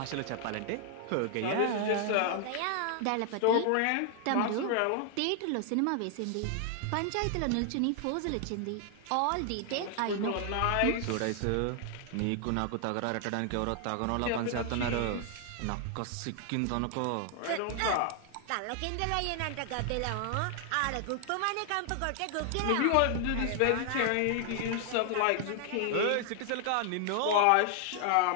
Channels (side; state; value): both; different; correlation 0.00